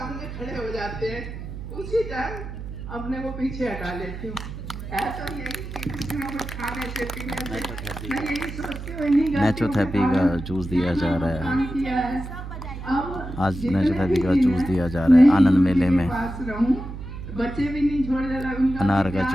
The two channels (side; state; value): right; noise; hum, 9 dB below the sound